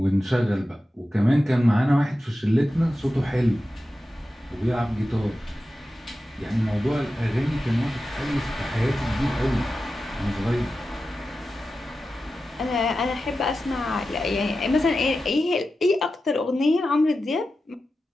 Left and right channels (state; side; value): normal; both; correlation 0.92